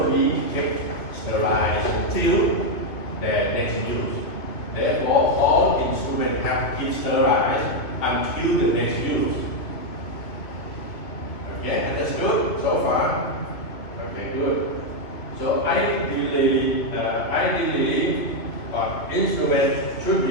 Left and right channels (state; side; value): late; right; 2.8 ms